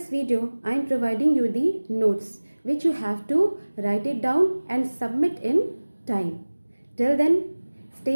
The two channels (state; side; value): inverted; both; correlation -1.00